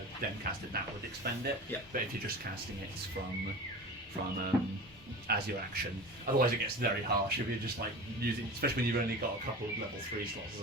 then cast it, that would expend it. Yeah. But if you're just casting it from as your action, otherwise it gets very harsh if you're just like using, especially when you've only got a couple of level 3 slots or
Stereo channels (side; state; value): both; normal; correlation 0.33